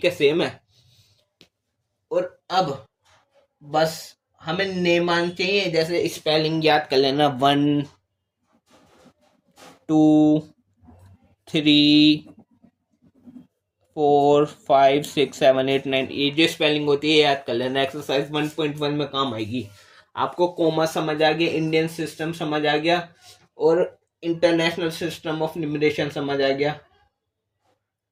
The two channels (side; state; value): both; identical; correlation 1.00